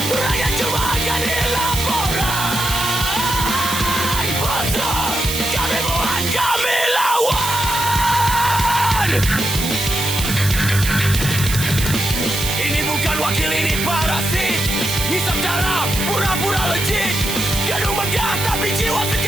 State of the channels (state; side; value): noise; right; hiss, 5 dB below the sound